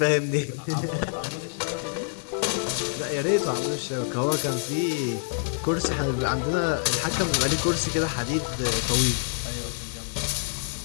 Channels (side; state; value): right; silent; digital silence